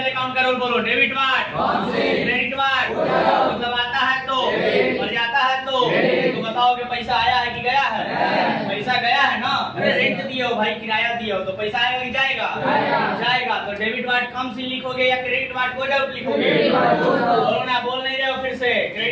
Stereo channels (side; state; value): both; identical; correlation 1.00